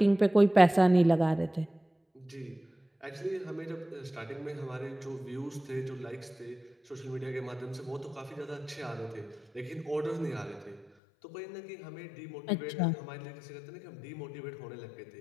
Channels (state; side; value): drops out; right; at 10.9 s